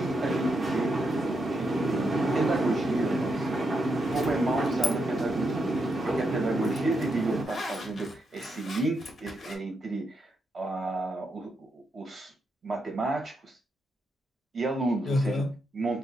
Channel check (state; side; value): normal; both; correlation 0.82